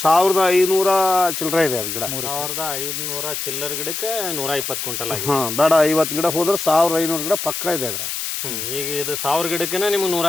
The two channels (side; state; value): left; noise; hiss, 4 dB below the sound